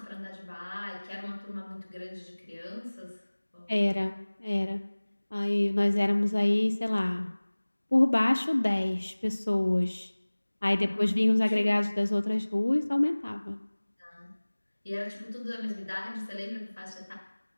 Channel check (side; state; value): both; inverted; correlation -1.00